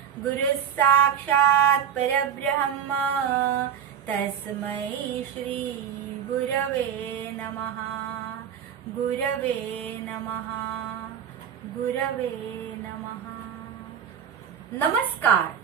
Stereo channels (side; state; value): left; quieter; 8.5 dB